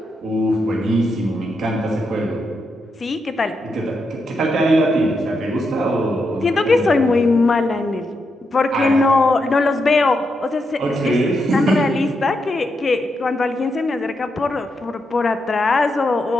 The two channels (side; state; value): both; normal; correlation 0.83